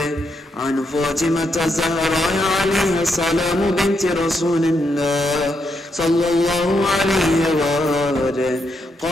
عن فاطمة الزهراء عليها السلام بنت رسول الله صلى الله عليه وآله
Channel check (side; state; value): both; normal; correlation 0.80